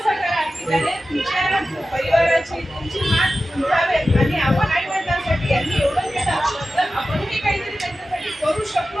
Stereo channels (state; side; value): normal; both; correlation 0.94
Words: करा की त्याने तुमच्या परिवाराची तुमची मान उंचावेल. आणि आपण आई वडिलांसाठी यांनी एवढं केलं तर आपणही काहीतरी त्यांच्यासाठी करू